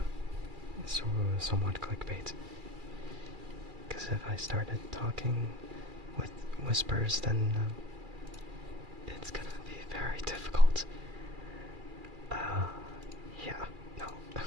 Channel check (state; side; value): late; left; 2.4 ms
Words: So, somewhat clickbait. Because if I started talking with whispers, then it's gonna be very difficult. Yeah, no.